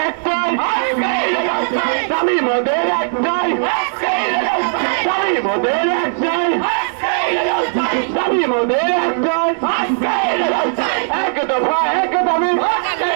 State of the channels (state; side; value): silent; left; digital silence